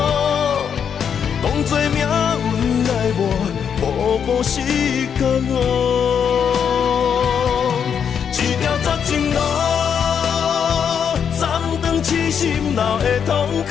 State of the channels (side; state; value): right; quieter; 7.6 dB